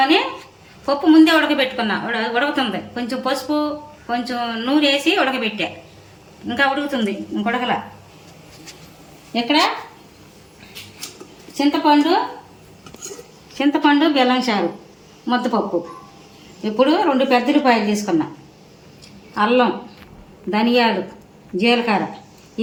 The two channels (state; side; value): identical; both; correlation 1.00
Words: పప్పు ముందే ఉడకబెట్టుకున్నా. ఉడుకుతుంది. కొంచెం పసుపు, కొంచెం నూనె వేసి ఉడకబెట్టా. ఇంకా ఉడుకుతుంది, ఇంకొడకల. ఇక్కడ చింతపండు బెల్లం చారు, ముద్దపప్పు. ఇప్పుడు 2 పెద్ద ఉల్లిపాయలు తీసుకున్నా, అల్లం, ధనియాలు, జీలకర్ర